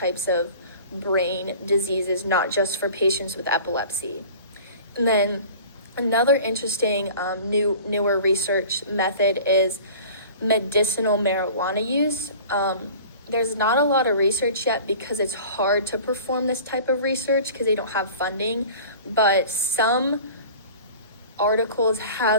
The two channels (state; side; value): inverted; both; correlation -0.42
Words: of brain diseases, not just for patients with epilepsy. And then another interesting newer research method is medicinal marijuana use. There's not a lot of research yet because it's hard to perform this type of research because they don't have funding, but some articles